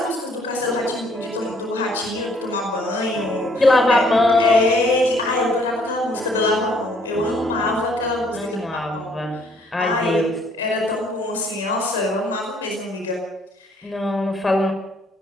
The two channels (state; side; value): normal; both; correlation 0.64